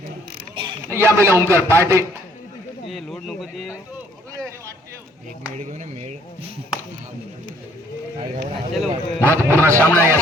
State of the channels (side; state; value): both; normal; correlation 0.63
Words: यावेळेला ओंकार पाटे. लोड नको ते एक मेड घेऊन मेड. महत्वपूर्ण सामना या